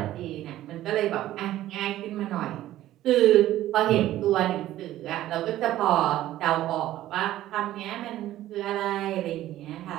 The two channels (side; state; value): left; quieter; 14.0 dB